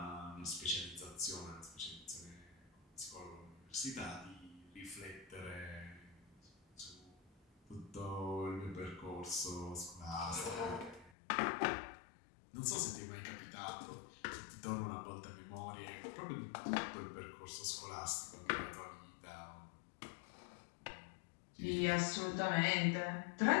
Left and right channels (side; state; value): right; drops out; at 11.1 s